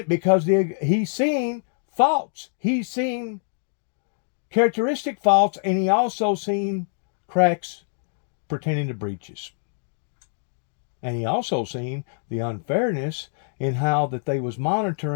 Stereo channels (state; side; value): silent; right; digital silence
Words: because he's seen faults. He's seen characteristic faults, and he also seen cracks pertaining to breaches. And he also seen the unfairness in how that they was